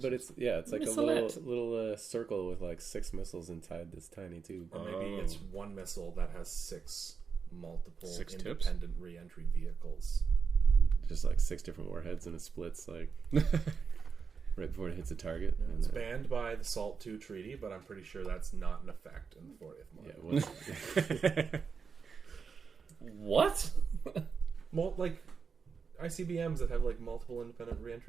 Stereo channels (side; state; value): left; quieter; 5.7 dB